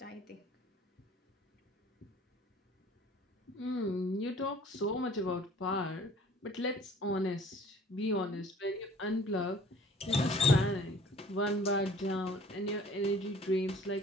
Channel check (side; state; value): both; normal; correlation 0.52